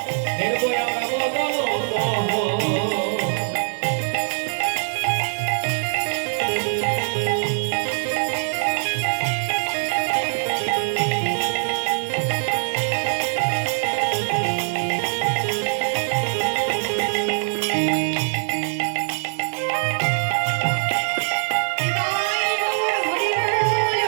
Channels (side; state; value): left; silent; digital silence